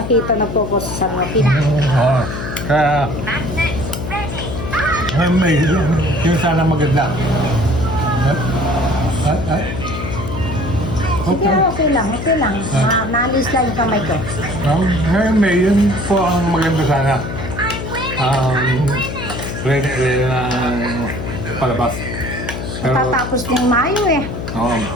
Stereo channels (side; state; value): left; noise; hum, 6 dB below the sound